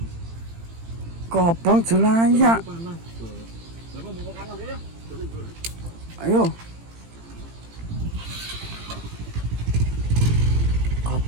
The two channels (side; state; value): left; late; 18 ms